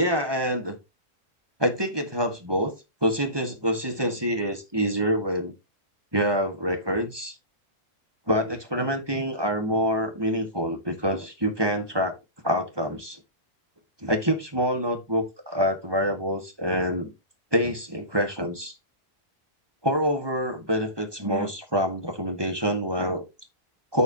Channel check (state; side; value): late; left; 1.2 ms